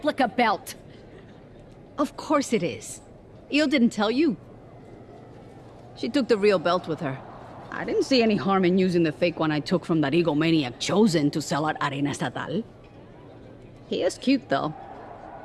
belt. Of course it is. Io didn't tell you. She took the real belt with her. I didn't see any harm in using the fake one I took from that egomaniac Chosen to sell at Arena Estatal. He is cute, though.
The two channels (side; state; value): both; identical; correlation 1.00